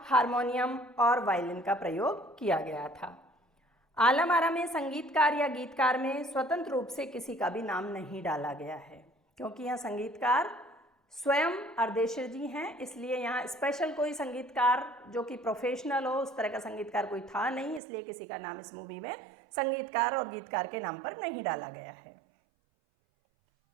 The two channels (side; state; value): left; drops out; at 17.8 s